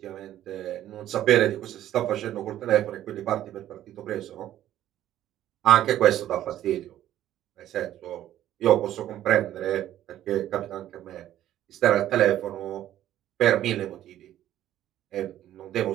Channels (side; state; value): left; quieter; 12.5 dB